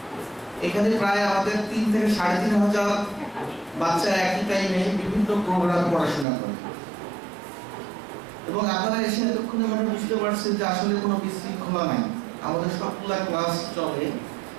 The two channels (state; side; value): drops out; left; at 6.2 s